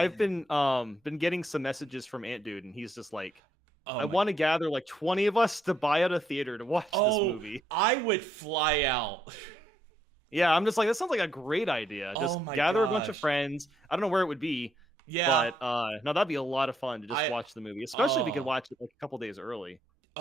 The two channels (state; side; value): normal; both; correlation 0.74